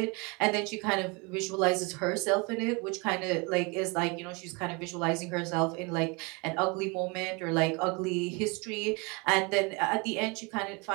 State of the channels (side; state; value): left; quieter; 29.1 dB